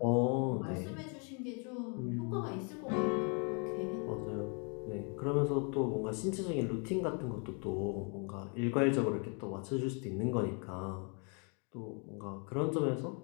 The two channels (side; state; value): right; quieter; 37.0 dB